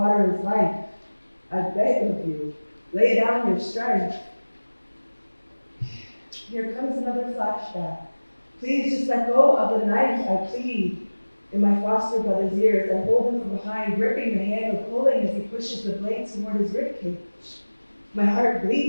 is life. I beg of you, lay down your strength. Here comes another flashback. Please just let go of the knife, I plead. In my foster brother's ears, I hold him from behind, gripping the handle, pulling as he pushes the blade toward his ribcage. My heart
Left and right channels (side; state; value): both; inverted; correlation -1.00